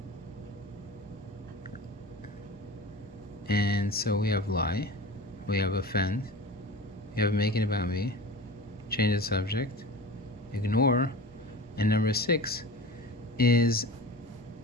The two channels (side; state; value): both; normal; correlation 0.34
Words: And so we have lie, we have offend, we have make it about me, change the subject, ignore, and number 6 is